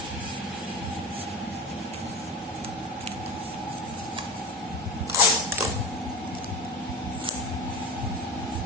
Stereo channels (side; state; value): both; normal; correlation 0.27